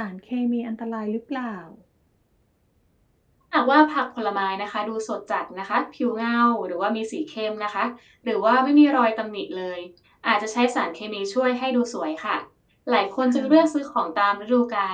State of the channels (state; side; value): identical; both; correlation 1.00